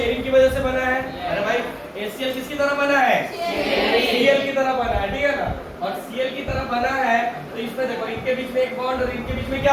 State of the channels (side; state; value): both; identical; correlation 1.00